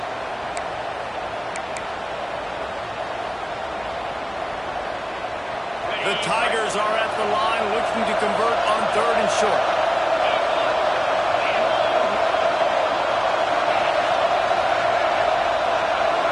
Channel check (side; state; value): both; identical; correlation 1.00